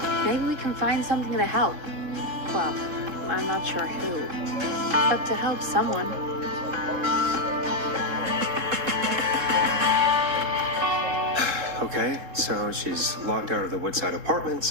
Maybe we can find something to help. Well, I'm not sure who, but to help someone. Okay, so she's locked out of the Woodside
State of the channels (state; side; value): late; left; 3.7 ms